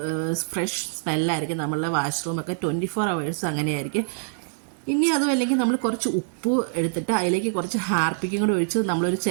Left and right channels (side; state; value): left; silent; 62 dB below the other